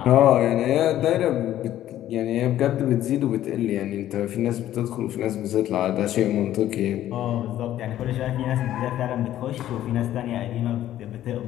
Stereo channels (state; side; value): quieter; right; 12.7 dB